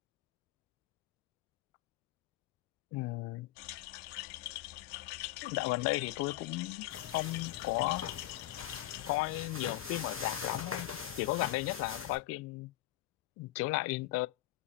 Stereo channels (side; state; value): right; quieter; 15.4 dB